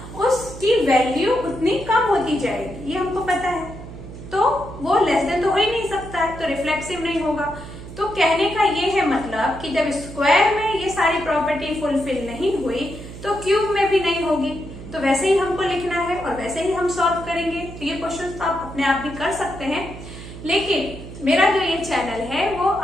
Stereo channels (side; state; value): right; noise; hum, 13 dB below the sound